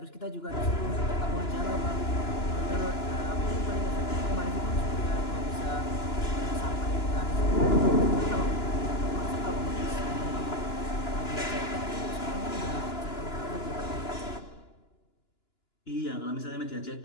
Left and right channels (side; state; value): right; late; 2.9 ms